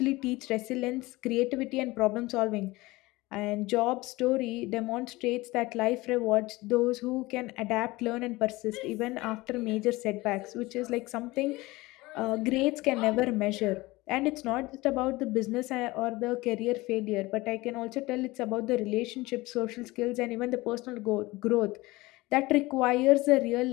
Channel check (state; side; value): quieter; right; 20.8 dB